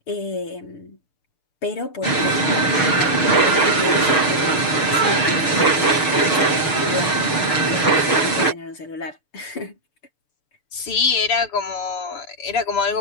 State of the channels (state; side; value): late; right; 6.9 ms